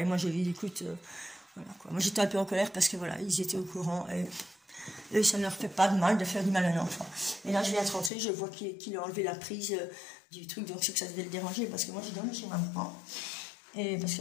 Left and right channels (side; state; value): right; drops out; at 8.1 s